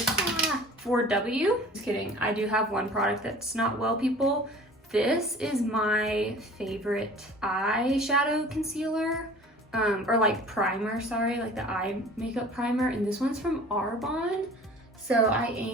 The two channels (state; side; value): normal; both; correlation 0.45